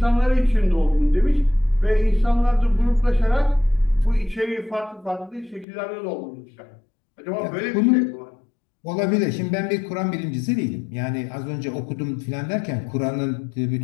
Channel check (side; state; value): right; drops out; at 5.7 s